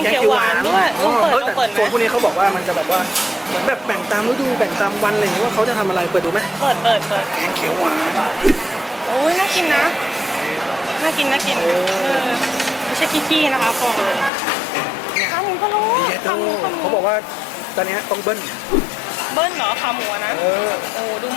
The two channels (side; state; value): right; drops out; at 14.3 s